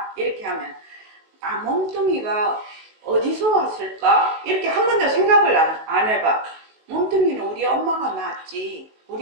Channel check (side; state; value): left; late; 19 ms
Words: 이렇게 하면 몸뚱이가 어디서 왔을까? 이렇게 한 번도 생각을 안 해봐. 몸뚱이는 우리 엄마가 낳았지.